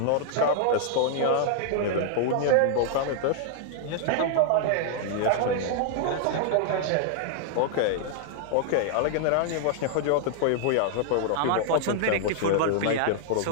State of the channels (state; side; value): different; both; correlation -0.01